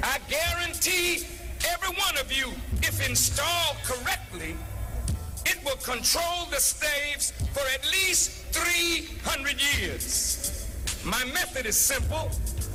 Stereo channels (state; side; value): identical; both; correlation 1.00